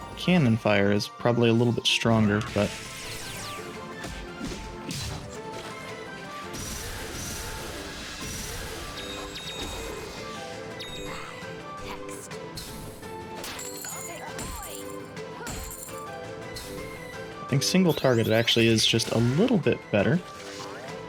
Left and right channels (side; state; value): both; identical; correlation 1.00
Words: cannon fire is probably a little bit stronger, but I think single targeted actually is just a little bit better.